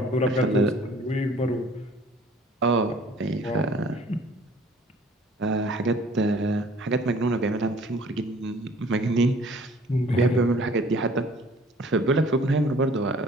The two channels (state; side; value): normal; both; correlation 0.53